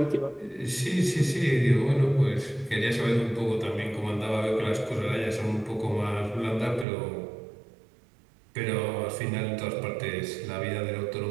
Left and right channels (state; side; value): drops out; left; at 6.9 s